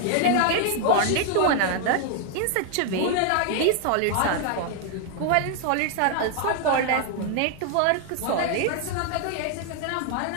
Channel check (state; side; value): different; both; correlation 0.00